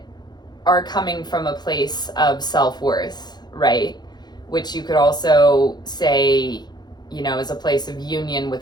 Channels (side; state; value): right; late; 0.20 ms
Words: are coming from a place of self-worth, right, which you could also say, you know, is a place of union